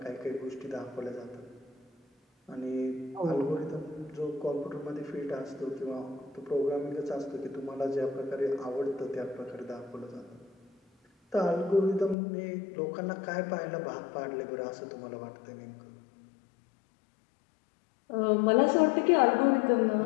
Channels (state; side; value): drops out; right; at 12.2 s